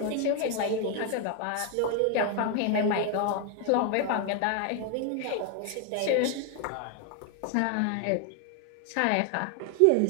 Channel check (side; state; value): both; different; correlation 0.00